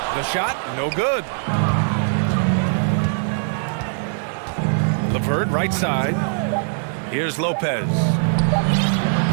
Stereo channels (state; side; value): silent; left; digital silence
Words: The shot, no good. LeVert, right side. Here's Lopez.